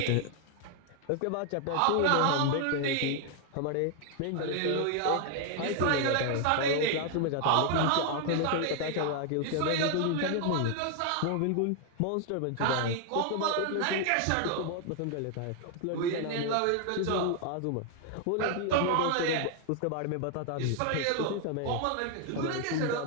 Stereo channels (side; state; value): both; different; correlation 0.00